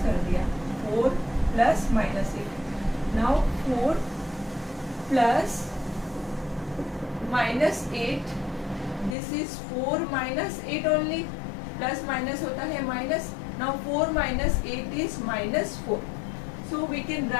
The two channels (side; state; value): right; drops out; at 9.2 s